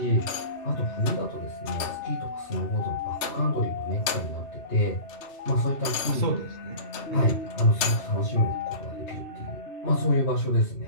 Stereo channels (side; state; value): right; late; 2.6 ms